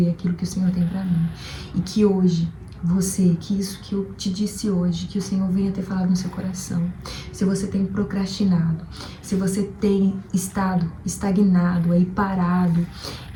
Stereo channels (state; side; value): identical; both; correlation 1.00